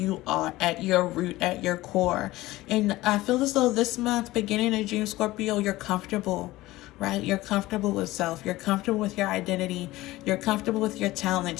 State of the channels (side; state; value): right; quieter; 17.9 dB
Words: are at your root, at your core. And I feel as though this month, beginning of June, Scorpio, you're comfortable, right? You're comfortable with self. You're comfortable with your identity. You're comfortable with your